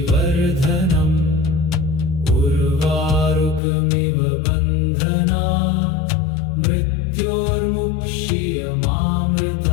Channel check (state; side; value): drops out; right; at 3.6 s